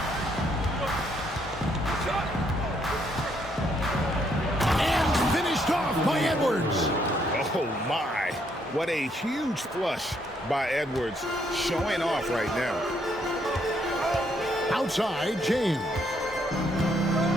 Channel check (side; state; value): both; normal; correlation 0.72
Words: And finished off by Edwards. Oh, my. What a huge flush by Edwards, showing off right now. Outside, James.